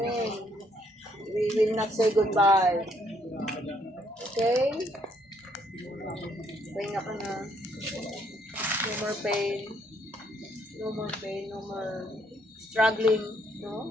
We will not say goodbye. Okay? Pahinga ka na. No more pain. No more pain, no more struggling, no?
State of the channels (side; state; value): both; normal; correlation 0.69